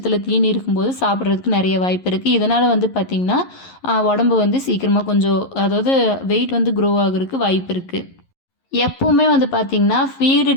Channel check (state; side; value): late; right; 11 ms